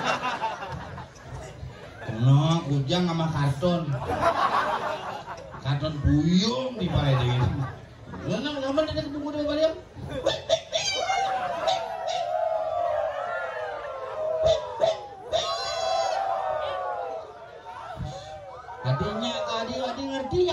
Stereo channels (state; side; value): identical; both; correlation 1.00